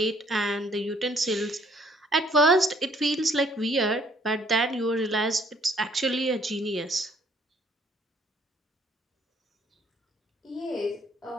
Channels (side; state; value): both; normal; correlation 0.63